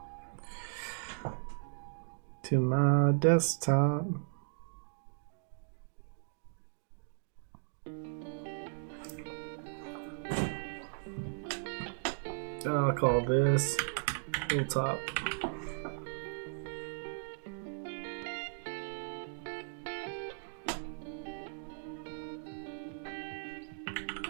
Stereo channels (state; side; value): silent; left; digital silence